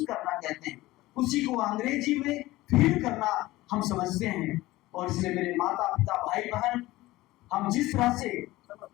करना कहते हैं, उसी को अंग्रेजी में फील करना हम समझते हैं। और इसलिए मेरे माता पिता भाई बहन, हम जिस तरह से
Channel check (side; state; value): right; quieter; 18.1 dB